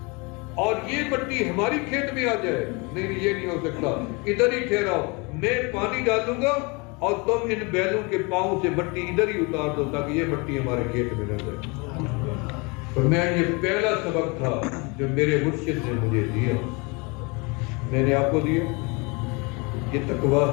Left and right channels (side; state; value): right; quieter; 28.9 dB